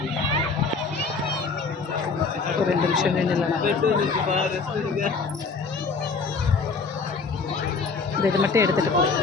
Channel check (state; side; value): quieter; right; 4.6 dB